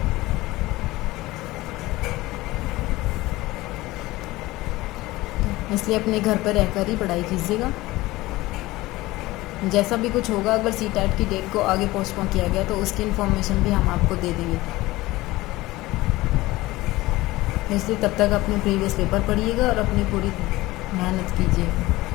इसलिए अपने घर पर रहकर ही पढ़ाई कीजिएगा। जैसा भी कुछ होगा, अगर सीटेट की डेट को आगे पोस्टपोन किया गया तो उसकी इन्फॉर्मेशन भी हम आपको दे देंगे। इसलिए तब तक अपने प्रीवियस पेपर पढ़िएगा और अपनी पूरी मेहनत कीजिए।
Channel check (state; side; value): quieter; right; 18.9 dB